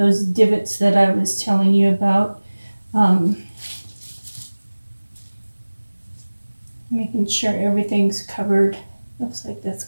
divots that I was telling you about. Making sure everything's covered. Looks like that's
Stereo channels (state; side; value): inverted; both; correlation -1.00